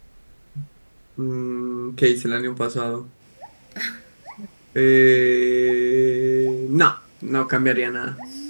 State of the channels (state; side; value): inverted; both; correlation -1.00